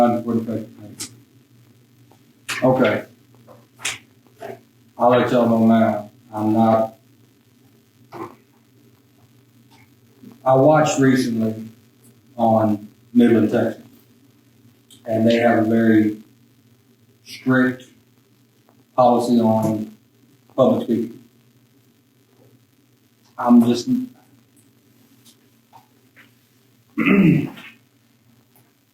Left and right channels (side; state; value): both; identical; correlation 1.00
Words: for effective date. Okay. I'll let y'all know now. I watched recently on Midland, Texas, and they have a very strict policy on public speaking. I'm just, and